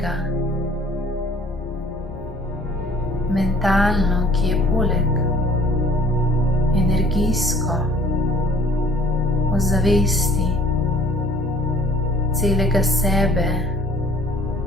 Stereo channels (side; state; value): both; normal; correlation 0.54